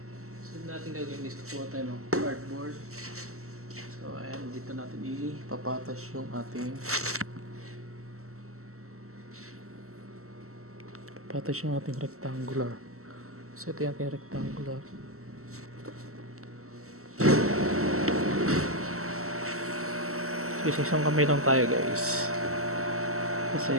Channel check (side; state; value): left; late; 0.63 ms